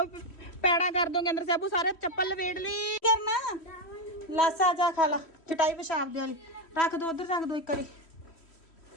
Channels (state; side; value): late; right; 3.1 ms